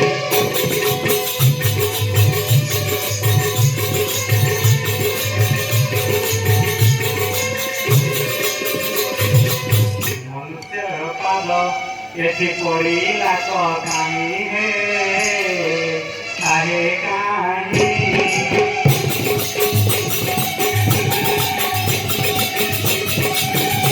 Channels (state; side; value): identical; both; correlation 1.00